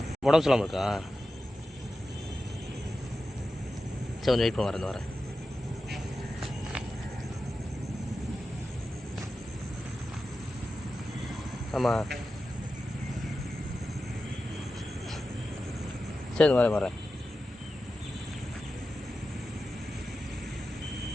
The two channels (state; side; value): normal; both; correlation 0.92